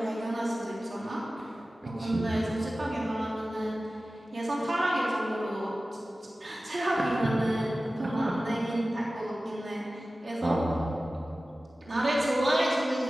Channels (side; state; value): both; normal; correlation 0.96